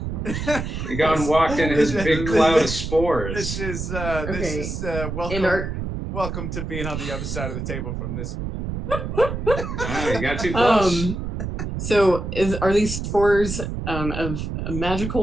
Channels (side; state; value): right; noise; rumble, 5 dB below the sound